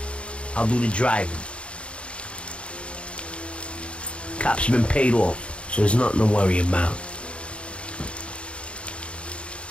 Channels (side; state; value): right; late; 0.059 ms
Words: I'll do the driving. Cops have been paid off, so there's nothing to worry about.